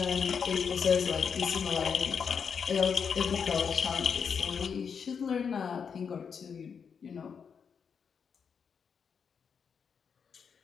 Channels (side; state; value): right; quieter; 6.6 dB